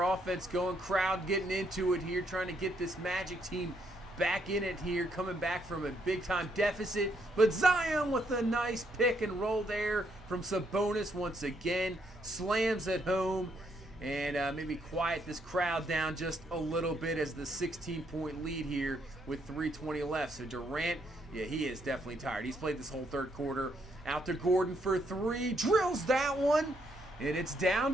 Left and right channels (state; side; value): normal; both; correlation 0.74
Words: offense going. Crowd getting into it here, trying to get this Magic team back in it here, coming back from a big-time deficit. But Zion with a nice pick and roll there from Sabonis once again. Slams it home. And maybe quiet this crowd down just a little bit as the 16-point lead here with 3:20 left. So Durant, yeah, he is definitely tired. He's played this whole third quarter. Out to Gordon for three. Drills that one. And it's